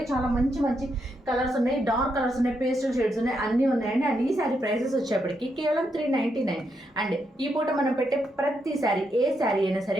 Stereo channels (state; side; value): normal; both; correlation 0.80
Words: చాలా మంచి మంచి కలర్స్ ఉన్నాయి, డార్క్ కలర్స్ ఉన్నాయి, పేస్టల్ షేడ్స్ ఉన్నాయి, అన్నీ ఉన్నాయండి. అండ్ ఈ శారీ ప్రైసెస్ వచ్చేప్పటికి కేవలం 399. అండ్ ఈ పూట మనం పెట్టే ప్రతి శారీ, ఏ శారీ అయినా